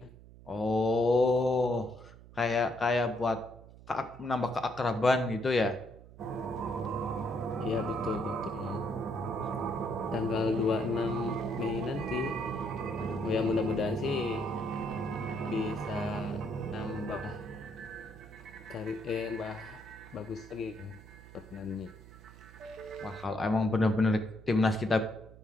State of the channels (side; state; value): right; noise; hum, 19 dB below the sound